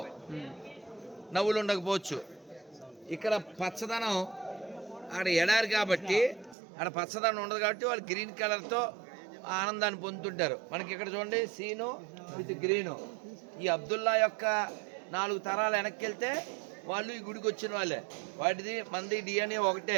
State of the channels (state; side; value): drops out; left; at 6.6 s